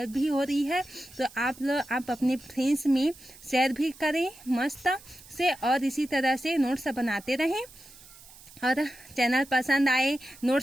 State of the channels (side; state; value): right; noise; hiss, 21 dB below the sound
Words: भी हो रही है तो आप अपने फ्रेंड्स में शेयर भी करें मस्त से, और इसी तरह से नोट्स बनाते रहें। और चैनल पसंद आए,